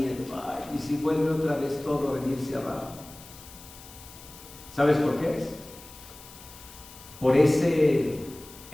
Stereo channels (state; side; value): noise; left; hiss, 18 dB below the sound